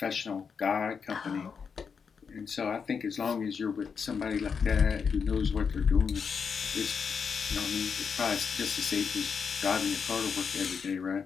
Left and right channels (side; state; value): right; quieter; 6.1 dB